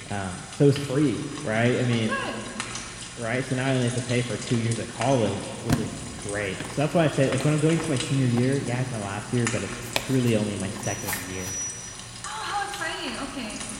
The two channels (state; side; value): identical; both; correlation 1.00